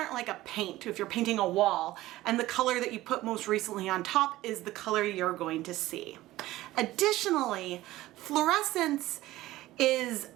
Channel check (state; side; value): quieter; left; 16.6 dB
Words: like a paint. If you're painting a wall and the color that you put most recently on top is the color you're going to see. Additionally, fluorescence is